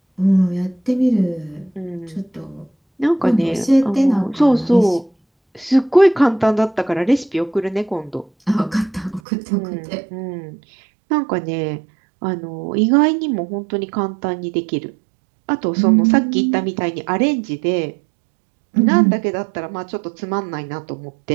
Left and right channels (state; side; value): drops out; left; at 9.2 s